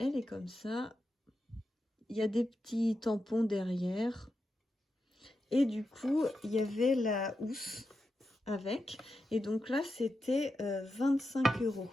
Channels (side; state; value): both; normal; correlation 0.88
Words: est comme ça. Il y a des petits tampons derrière. Et du coup, il y avait la housse avec. Et donc là, c'était 25 €.